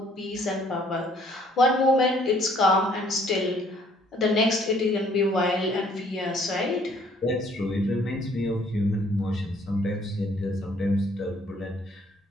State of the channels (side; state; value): both; normal; correlation 0.61